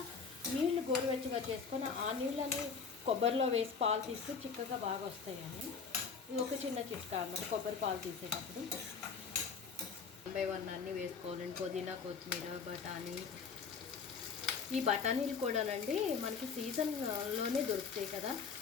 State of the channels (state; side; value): quieter; right; 5.7 dB